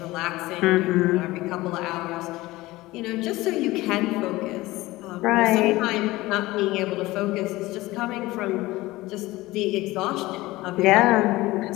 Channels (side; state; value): right; quieter; 19.0 dB